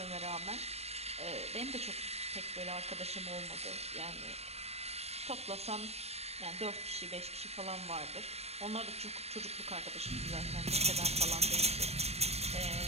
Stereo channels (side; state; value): left; late; 0.31 ms